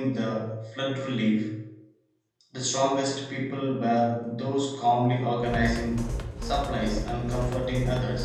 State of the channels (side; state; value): both; identical; correlation 1.00